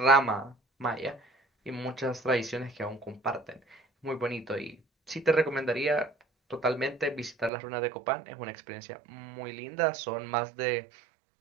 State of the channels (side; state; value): left; drops out; at 7.5 s